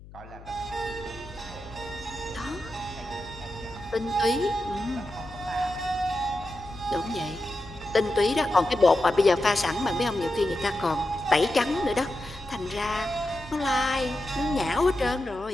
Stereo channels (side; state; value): left; noise; hum, 18 dB below the sound